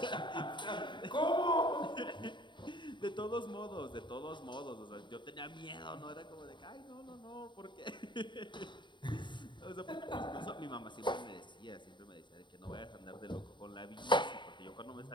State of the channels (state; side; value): late; right; 0.23 ms